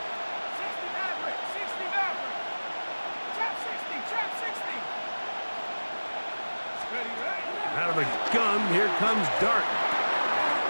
Out of the gun, here comes Dart.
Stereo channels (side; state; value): both; inverted; correlation -1.00